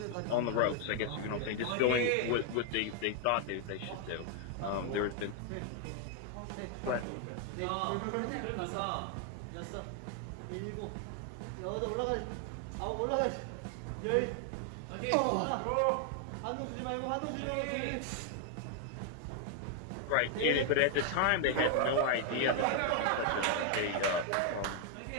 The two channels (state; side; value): different; both; correlation 0.00